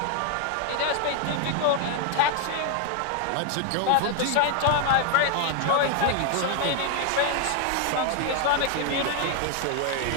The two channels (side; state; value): both; different; correlation 0.01